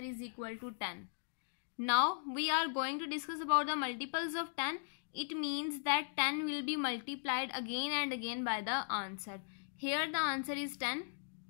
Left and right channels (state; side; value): silent; right; digital silence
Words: equal to 10. Now we are going to discuss about the multiples of 10. It means that 10 will be multiplied again and again by the answer. Here the answer is 10.